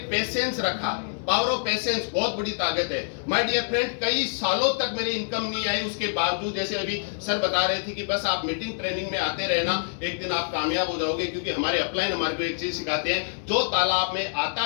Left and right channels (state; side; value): silent; right; digital silence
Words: पेशेंस रखा, पावर ऑफ पेशेंस बहुत बड़ी ताकत है माय डियर फ्रेंड। कई सालों तक मेरी इनकम नहीं आई, उसके बावजूद जैसे अभी सर बता रहे थे कि बस आप मीटिंग ट्रेनिंग में आते रहना, एक दिन आप कामयाब हो जाओगे, क्योंकि हमारे अपलाइन हमारे को एक चीज सिखाते हैं, जो तालाब में